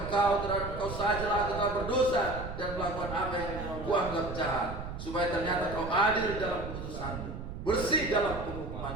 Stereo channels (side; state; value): right; noise; rumble, 8 dB below the sound